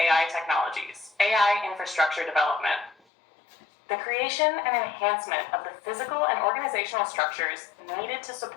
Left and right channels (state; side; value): drops out; right; at 3.0 s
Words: technologies. AI infrastructure development, the creation and enhancement of the physical and organizational structures needed to